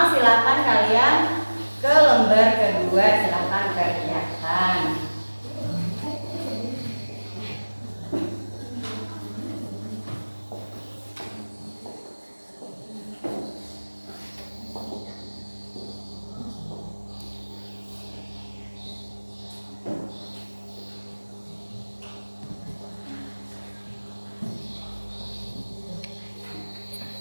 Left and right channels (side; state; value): both; inverted; correlation -1.00